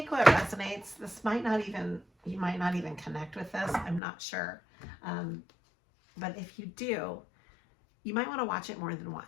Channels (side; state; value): right; drops out; at 4.0 s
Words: what resonates. You might not even connect with this. I'm not sure. But if you do, you might want to watch it more than